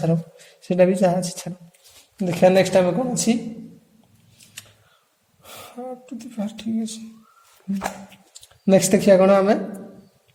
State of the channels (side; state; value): both; identical; correlation 1.00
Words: हम से भी जहाँ अच्छी छाड़ देखा नेक्स्ट टाइम कौन अच्छी टू द पावर ठीक अच्छे नेक्स्ट देखिए कौन आम